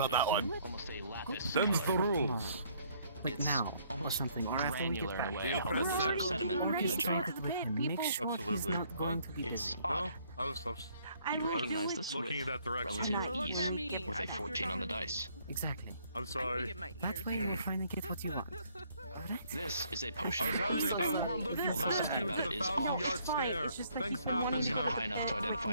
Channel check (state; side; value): inverted; both; correlation -0.65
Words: that one. Almost a lapis. Them's the rules. But now, or something, or after we get Granular back. in a way. I hope there's like sediment in the jar. Make sure he's Absolutely. not going to be It's busy. odd. I was You recognize this looking in with that direction. relative ease me. with a 14 on the dice. Exactly. I'm sorry. That way you'll finally get what you want. Alright? This is a potion. I was more looking Although past something you about to it the is 1,000 off. yard stare. Things happen, It's you not know. high enough to